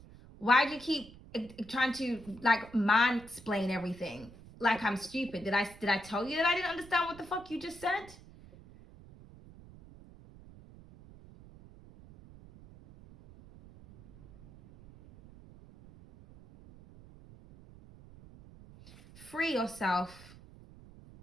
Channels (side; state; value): right; noise; rumble, 20 dB below the sound